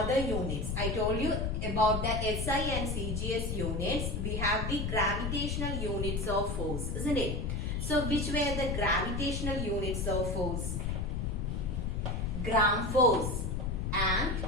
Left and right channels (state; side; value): noise; left; rumble, 2 dB below the sound